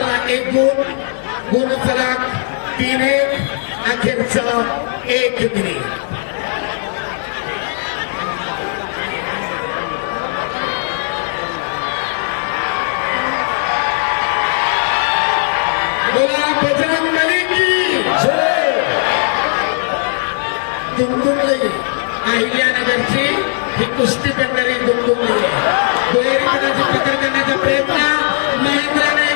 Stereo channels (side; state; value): right; silent; 63 dB below the other